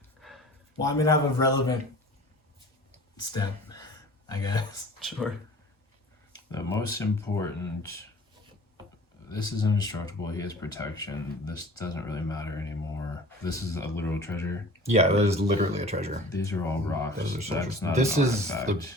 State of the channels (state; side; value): normal; both; correlation 0.44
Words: Well, I mean, I have a relevant step, I guess. Sure. The most important, this is indestructible, he has protection, this doesn't really matter anymore. This is a literal treasure. Yeah, that is literally a treasure. These are all rocks. Those are That's treasures. not This an is the artifact.